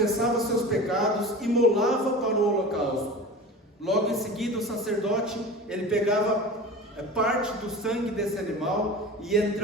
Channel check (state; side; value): normal; both; correlation 0.34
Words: seus pecados, imolava para o holocausto. Logo em seguida, o sacerdote, ele pegava parte do sangue desse animal e